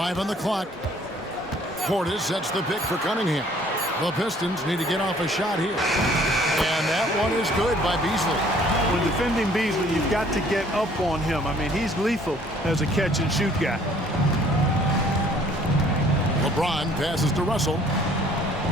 on the clock. Portis sets the pick for Cunningham. The Pistons need to get off a shot here. And that one is good by Beasley. When defending Beasley, you've got to get up on him. I mean, he's lethal as a catch-and-shoot guy. LeBron passes to Russell.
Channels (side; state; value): both; normal; correlation 0.58